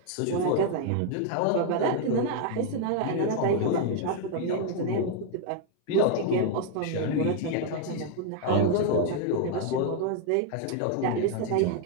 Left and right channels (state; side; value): different; both; correlation 0.00